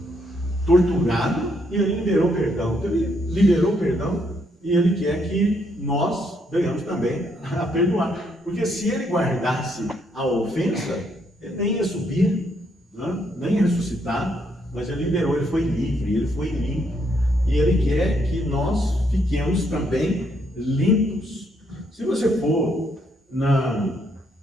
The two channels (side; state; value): both; normal; correlation 0.73